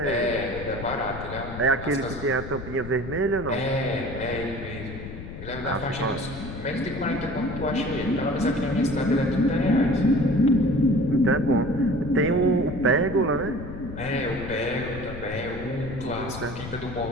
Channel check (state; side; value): noise; left; rumble, 10 dB below the sound